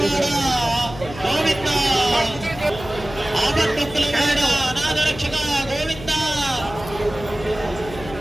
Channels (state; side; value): noise; left; hum, 14 dB below the sound